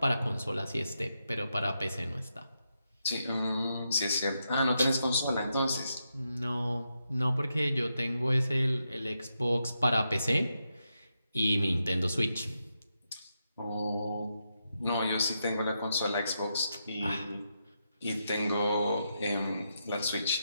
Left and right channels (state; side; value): inverted; both; correlation -0.84